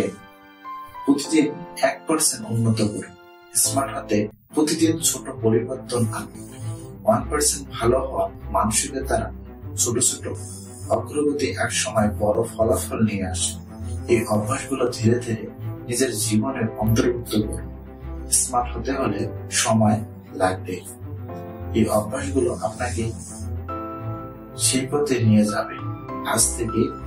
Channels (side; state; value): both; identical; correlation 1.00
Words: প্রতিদিন 1% উন্নত করুন। স্মার্ট হতে প্রতিদিন ছোট পরিবর্তন আনুন। 1% ভালো হওয়া মানসিকের দ্বারা ছোট ছোট অগ্রগতি এক সময় বড় ফলাফল নিয়ে আসে। এই অভ্যাসগুলো ধীরে ধীরে নিজের জীবনের অন্তর্ভুক্ত করুন। স্মার্ট হতে হলে সময় লাগবে। এই অভ্যাসগুলো আপনাকে সেই পথে নিয়ে যাবে। আজ থেকে